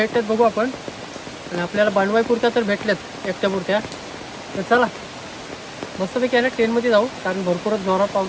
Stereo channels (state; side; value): identical; both; correlation 1.00